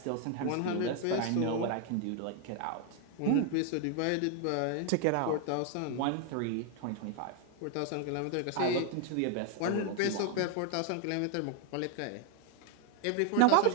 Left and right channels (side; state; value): both; different; correlation 0.01